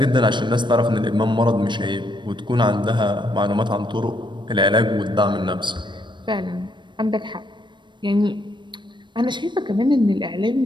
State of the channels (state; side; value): late; left; 0.22 ms